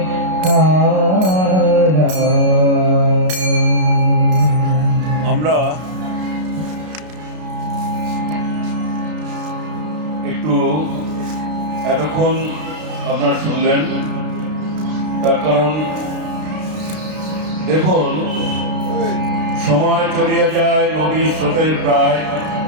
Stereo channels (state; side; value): late; left; 32 ms